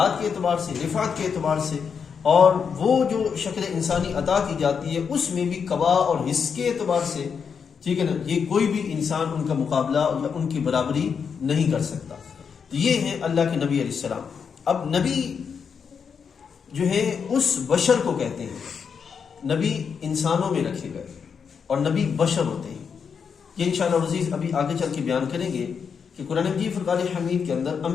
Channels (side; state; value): right; quieter; 6.4 dB